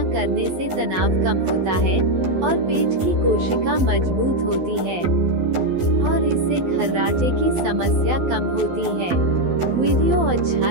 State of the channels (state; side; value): late; left; 12 ms